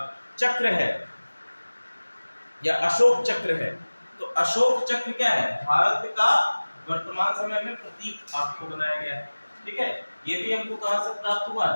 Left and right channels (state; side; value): inverted; both; correlation -1.00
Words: चक्र है या अशोक चक्र है, तो अशोक चक्र क्या है? भारत का वर्तमान समय में प्रतीक आपको बनाया गया है। ठीक है, ये भी हमको कहां से प्राप्त हुआ